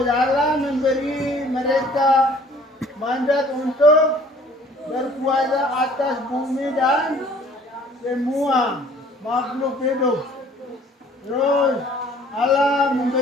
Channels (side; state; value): both; normal; correlation 0.54